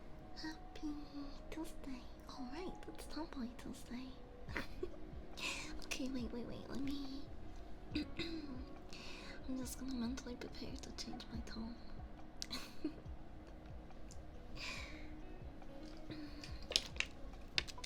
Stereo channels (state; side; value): identical; both; correlation 1.00